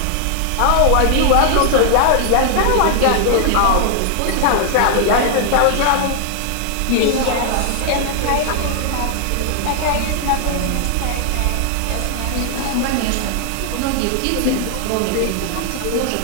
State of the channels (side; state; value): both; different; correlation 0.00